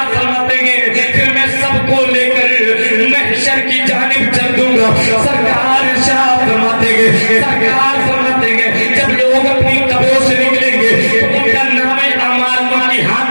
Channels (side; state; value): both; inverted; correlation -1.00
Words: فرماتے ہیں پھر میں سب کو لے کر محشر کی جانب چل دوں گا. سرکار ارشاد فرماتے ہیں سرکار فرماتے ہیں جب لوگ اپنی قبروں سے نکلیں گے تو ان کا نام اعمال ان کے